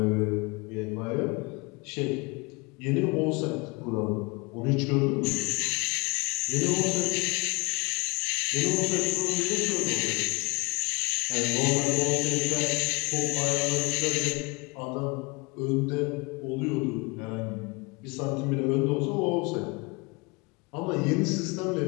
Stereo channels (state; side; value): quieter; right; 27.6 dB